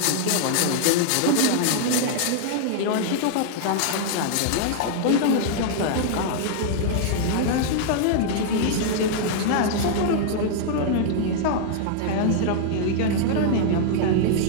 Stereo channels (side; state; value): both; different; correlation -0.01